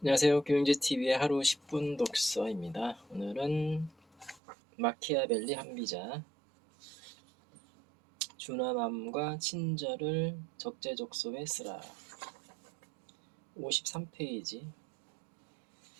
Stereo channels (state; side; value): drops out; left; at 4.4 s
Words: 안녕하세요. 교양제TV의 하루 10분 독서입니다. 오늘은 마키아벨리 한비자 준화맘과 친절을 적재적소에 쓰라. 53페이지.